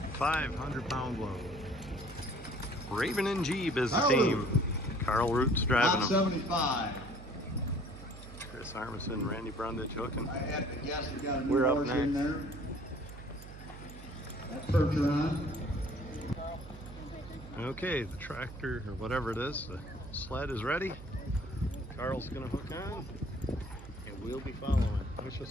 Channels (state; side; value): noise; right; hum, 14 dB below the sound